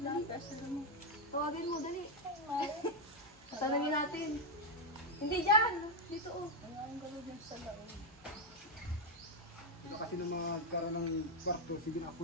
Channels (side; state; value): both; normal; correlation 0.02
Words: kasi mo. Tawagin mo, dali. Tanungin natin. Hindi dyan. Dito oh. Ang gano'n din sa laon. Sila kasi na magkaroon ng kwarto, sige na